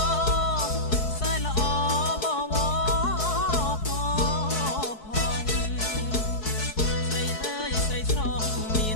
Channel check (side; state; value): right; late; 4.7 ms